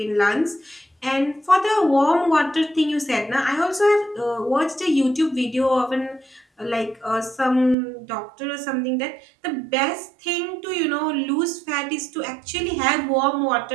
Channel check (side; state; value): left; drops out; at 7.8 s